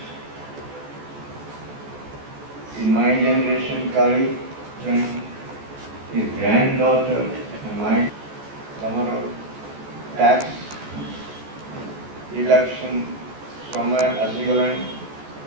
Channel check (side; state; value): left; late; 14 ms